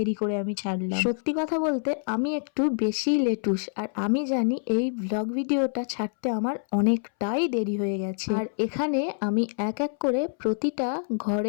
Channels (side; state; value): right; silent; 61 dB below the other